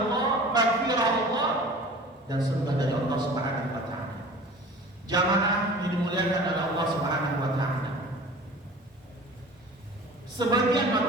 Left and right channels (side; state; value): both; normal; correlation 0.42